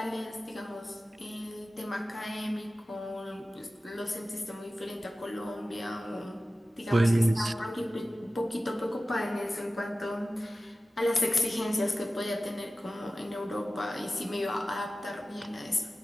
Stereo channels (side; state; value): both; normal; correlation 0.95